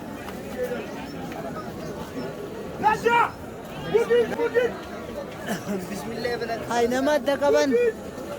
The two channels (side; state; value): both; identical; correlation 1.00